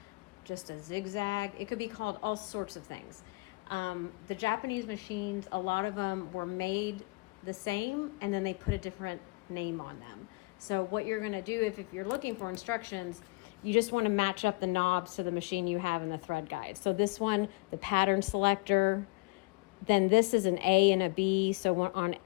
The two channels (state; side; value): quieter; right; 27.2 dB